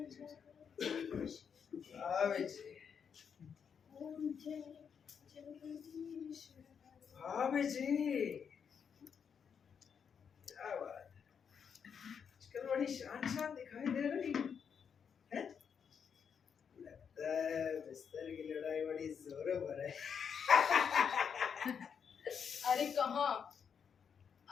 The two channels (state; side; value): quieter; right; 7.0 dB